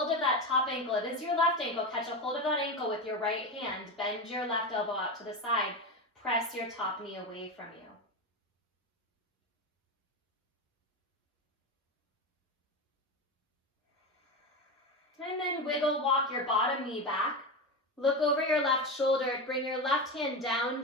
of that top ankle. It is your left ankle. Catch a hold of that ankle with your right hand. Bend your left elbow out to the side. Press your top knee away from you. And then wiggle walk your bottom knee back. Look over your left shoulder. Bring your left hand down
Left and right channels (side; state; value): both; normal; correlation 0.19